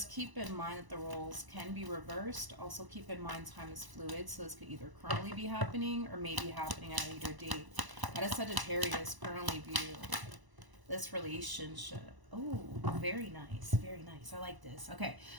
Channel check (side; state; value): left; late; 1.0 ms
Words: keep in mind that the roles can be reversed. Also keep in mind time is fluid, so this could either currently be happening or maybe happening at a later date. How does Sagittarius currently view this relationship? Oh, very nice, very nice. I like this. Okay,